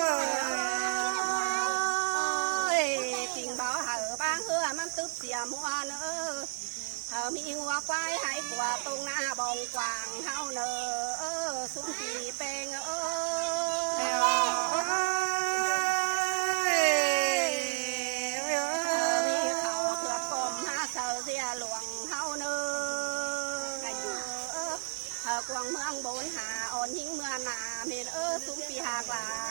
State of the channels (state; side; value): silent; left; 57 dB below the other